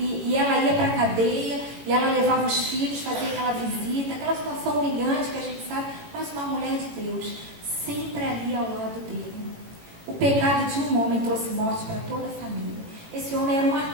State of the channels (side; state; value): left; late; 18 ms